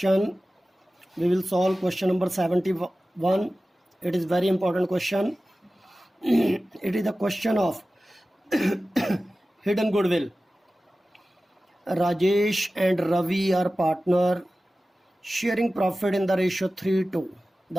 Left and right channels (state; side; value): normal; both; correlation 0.96